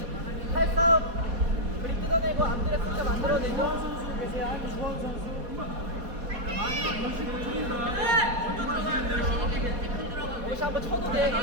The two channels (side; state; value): left; late; 4.2 ms